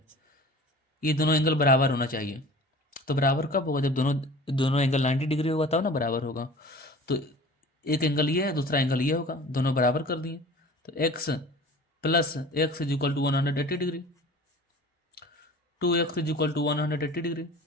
ये दोनों एंगल बराबर होना चाहिए। तो बराबर कब होगा, जब दोनों दोनों एंगल 90 डिग्री होगा तब ना बराबर होगा। तो एक एंगल ये है दूसरा एंगल ये होगा, दोनों बराबर कर दिए, तो x plus x is equal to 180 degree, 2x is equal to 180 degree,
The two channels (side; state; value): both; normal; correlation 0.42